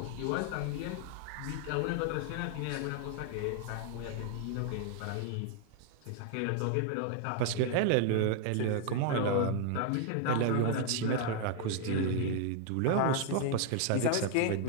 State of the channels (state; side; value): different; both; correlation 0.00